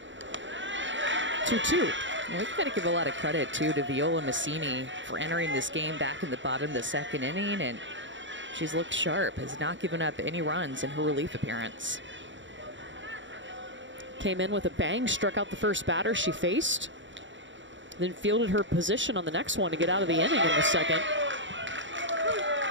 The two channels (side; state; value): left; late; 0.54 ms